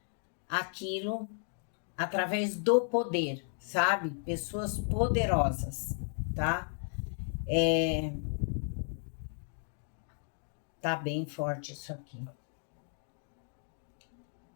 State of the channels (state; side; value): silent; right; 55 dB below the other